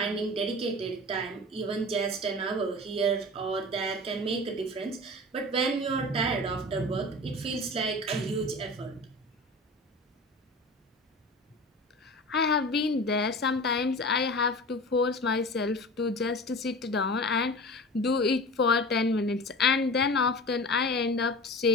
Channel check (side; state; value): both; normal; correlation 0.35